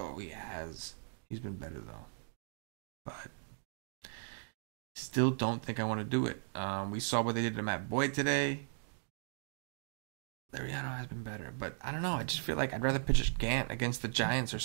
He has. He's been better, though. But still don't think I want to do it. We saw what they did to Matt Boyd today. Liriano has been better, but I don't know. I just feel like I'd rather pitch Gant against the Giants or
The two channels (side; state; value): left; silent; digital silence